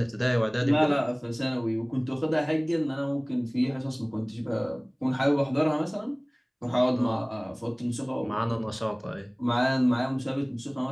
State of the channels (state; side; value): identical; both; correlation 1.00